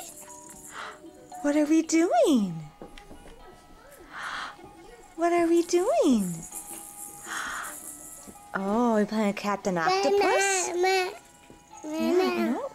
What are we doing? What are we doing? Oh, we're playing Captain Octopus? Yeah, I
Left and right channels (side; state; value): both; identical; correlation 1.00